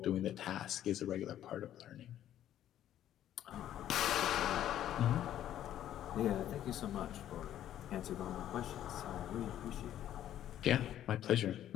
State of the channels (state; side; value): quieter; right; 11.6 dB